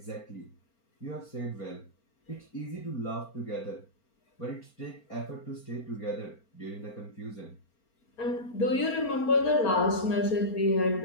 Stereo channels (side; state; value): right; late; 4.4 ms